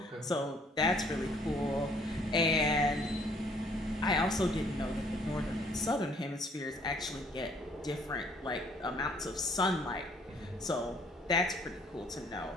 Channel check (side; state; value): both; normal; correlation 0.61